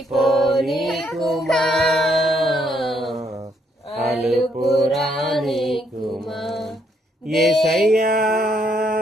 కుమా, అలుపురాని కుమా. యేసయ్యా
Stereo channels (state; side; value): normal; both; correlation 0.72